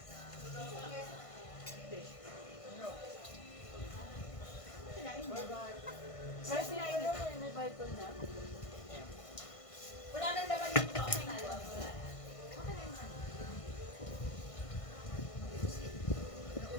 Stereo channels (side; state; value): right; late; 1.5 ms